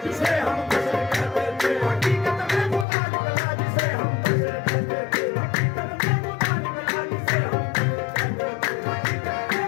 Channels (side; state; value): right; drops out; at 2.9 s